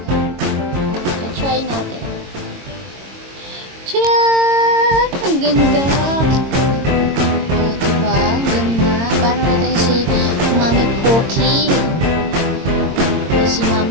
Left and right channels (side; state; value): left; late; 22 ms